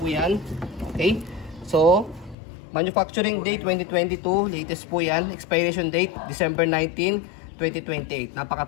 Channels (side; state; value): right; drops out; at 2.4 s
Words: yan. Okay? So, manufacturing date 2022, latest po yan. Expiration date December 19, 2028.